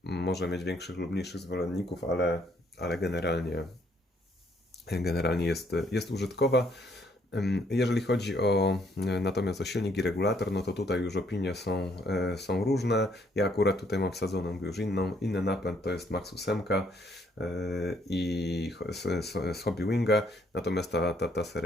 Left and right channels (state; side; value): normal; both; correlation 0.68